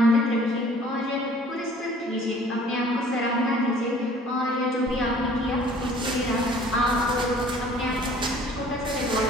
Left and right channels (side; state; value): both; normal; correlation 0.52